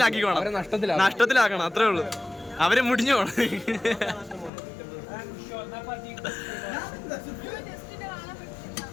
നഷ്ടത്തിലാക്കണം, അത്രേ ഉള്ളൂ. അവരെ മുടിഞ്ഞു പോണം.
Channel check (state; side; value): drops out; right; at 4.5 s